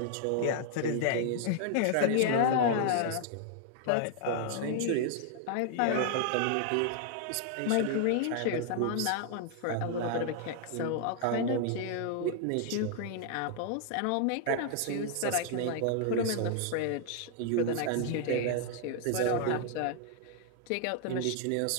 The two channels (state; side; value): different; both; correlation 0.00